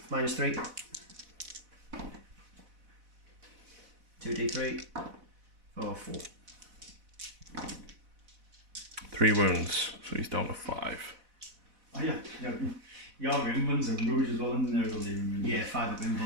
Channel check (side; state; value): left; late; 4.0 ms